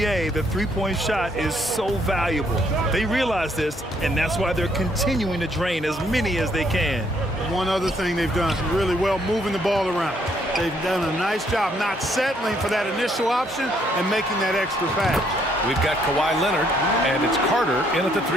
the three-point shot is so valuable. They realize this, and that's why they're continuing to drain as many as they can. One other thing they've done really well, moving the ball around. They've done a nice job not settling for that initial option and making that extra pass. We've got Kawhi Leonard, and it's Carter in at the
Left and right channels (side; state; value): both; normal; correlation 0.69